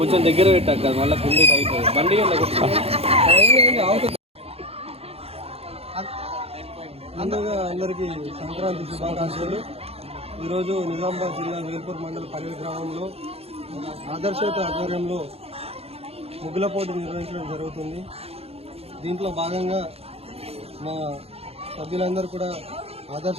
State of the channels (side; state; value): left; late; 0.29 ms